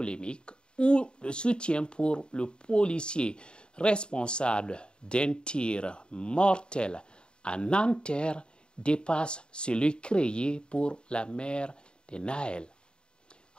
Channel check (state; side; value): late; right; 0.051 ms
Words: ou le soutien pour le policier responsable d'un tir mortel à Nanterre dépasse celui créé pour la mère de Nahel.